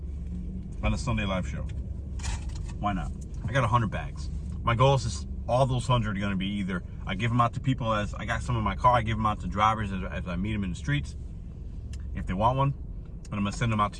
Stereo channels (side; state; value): both; identical; correlation 1.00